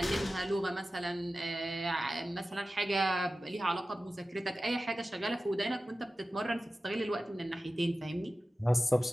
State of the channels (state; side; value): normal; both; correlation 0.94